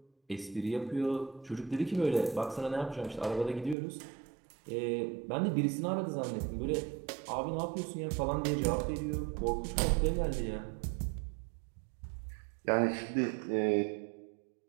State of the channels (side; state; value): left; drops out; at 3.8 s